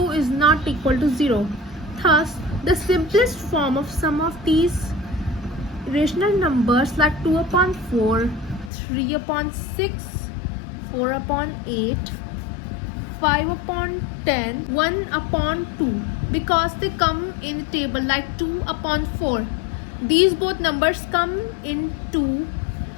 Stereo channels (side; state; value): right; drops out; at 8.7 s